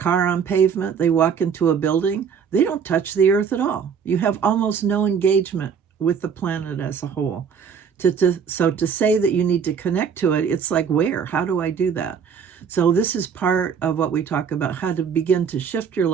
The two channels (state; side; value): quieter; left; 6.8 dB